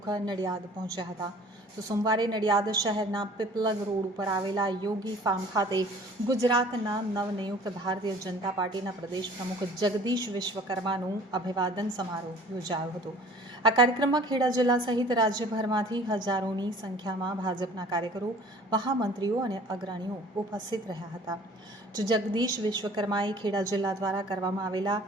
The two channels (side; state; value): both; normal; correlation 0.49